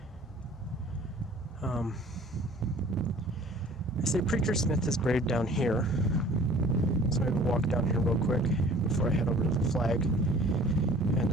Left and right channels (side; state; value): both; normal; correlation 0.50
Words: I say Preacher Smith is buried down here. So maybe walk down here real quick before I head over to the flag. And